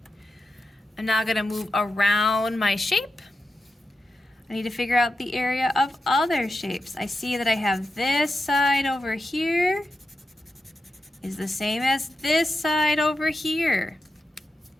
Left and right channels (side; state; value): both; normal; correlation 0.89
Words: I'm now going to move around my shape. I need to figure out the area of other shapes. I see that I have this side over here is the same as this side over here.